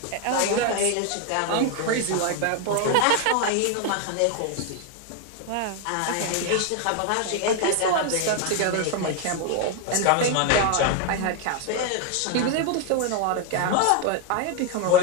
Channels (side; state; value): both; different; correlation 0.01